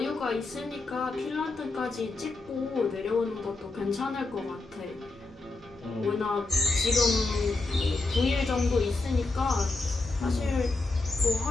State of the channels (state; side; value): quieter; right; 3.4 dB